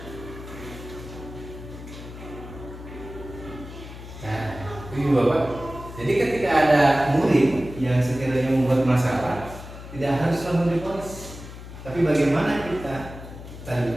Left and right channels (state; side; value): noise; left; hum, 13 dB below the sound